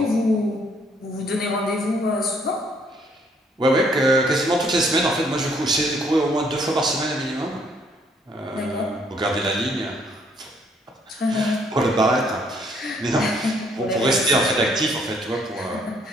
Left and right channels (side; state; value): both; normal; correlation 0.66